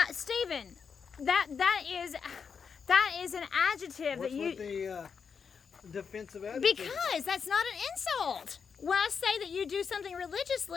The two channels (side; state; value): right; quieter; 6.2 dB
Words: Stephen, that is an adjective. What's that you with the defensive adjective? because that's not an insult. When I say that you do something